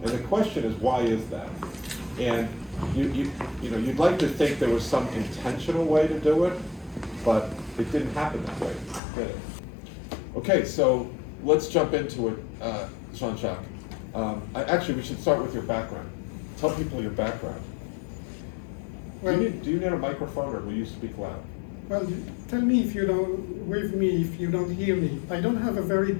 And the question is, why is that? And you'd like to think there was some intentional way to do it, but it didn't happen that way, did it? Okay, so let's jump into it, Jean-Jacques. Actually, we should start with your background. Tell people your background. Well, do you need a microphone, or will you speak loud? Well, tell me if you don't hear me. I don't have a very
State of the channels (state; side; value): drops out; right; at 9.0 s